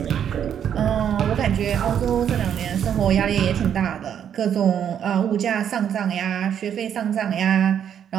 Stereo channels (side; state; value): left; quieter; 9.0 dB